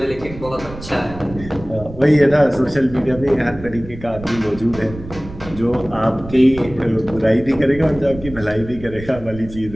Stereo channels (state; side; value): noise; right; rumble, 15 dB below the sound